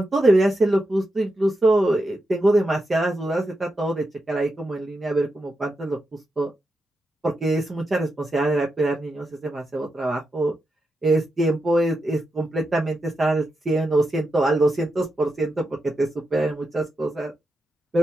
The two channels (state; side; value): normal; both; correlation 0.87